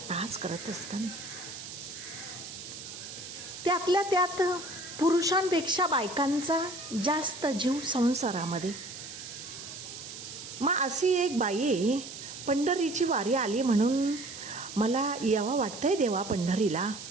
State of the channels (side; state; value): right; noise; hiss, 11 dB below the sound